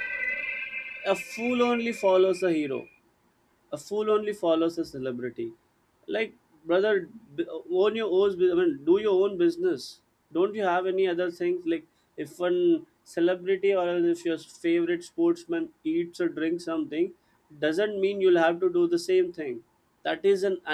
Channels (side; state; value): both; identical; correlation 1.00